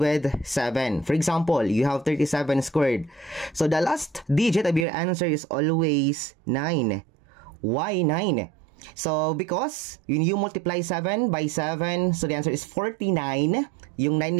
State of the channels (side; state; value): left; drops out; at 4.9 s